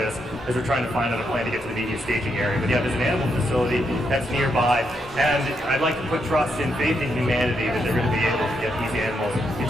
as we're trying to find out a plan to get to the media staging area. But yeah, there's an animal facility that's nearby, and I'd like to put trust and faith in humanity that they're going to be able to get these animals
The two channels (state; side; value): normal; both; correlation 0.80